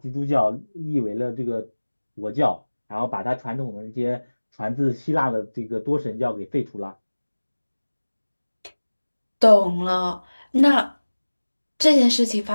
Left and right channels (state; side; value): inverted; both; correlation -1.00